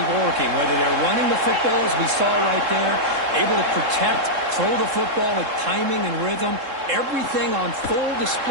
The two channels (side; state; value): left; late; 3.7 ms